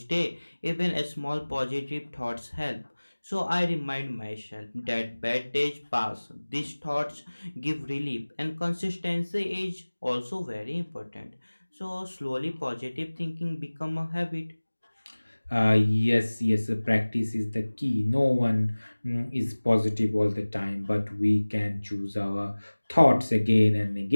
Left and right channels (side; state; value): both; inverted; correlation -1.00